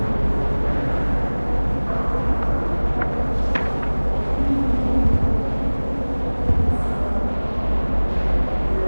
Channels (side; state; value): both; inverted; correlation -1.00